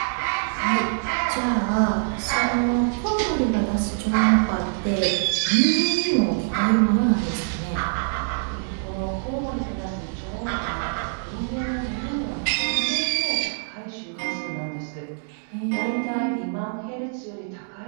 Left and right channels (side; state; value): left; silent; digital silence